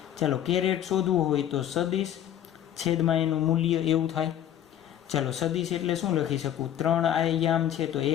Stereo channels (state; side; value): quieter; right; 10.8 dB